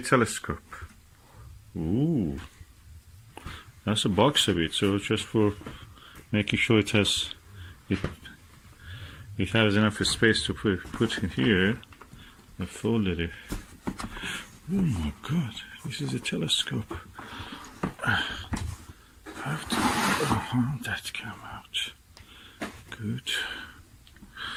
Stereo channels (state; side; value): identical; both; correlation 1.00